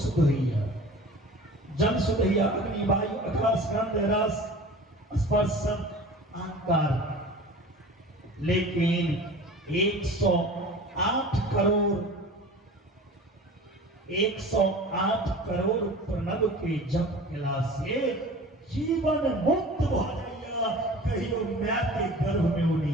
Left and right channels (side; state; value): both; normal; correlation 0.40